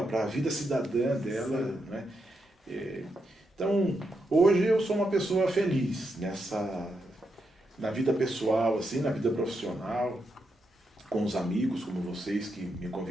para a vida cidadã dela, né? Então, hoje eu sou uma pessoa feliz na vida pessoal, assim, na vida profissional, com os amigos como vocês que me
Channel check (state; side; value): normal; both; correlation 0.83